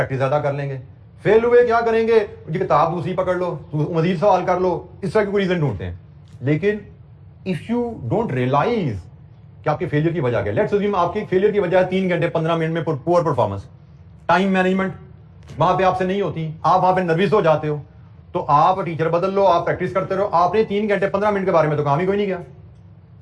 ज्यादा कर लेंगे। फेल हुए क्या करेंगे, किताब दूसरी पकड़ लो, मजीद सवाल कर लो, इस तरह के कोई रीजन ढूंढते हैं। लेकिन इफ यू डोंट रियलाइज कि आपके फेलियर की वजह क्या, लेट्स अज्यूम आपकी फेलियर की वजह 3 घंटे 15 मिनट में पुअर परफॉर्मेंस, टाइम मैनेजमेंट वहां पे आपसे नहीं होती, आप वहां पे नर्वस हो जाते हो, तो आप टीचर बदल लो, आप प्रैक्टिस करते रहो। आपने 3 घंटे 15 मिनट के बारे में तो काम ही कोई नहीं किया,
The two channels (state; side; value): identical; both; correlation 1.00